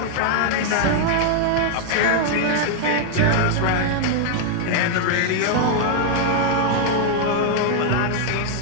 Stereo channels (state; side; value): different; both; correlation 0.00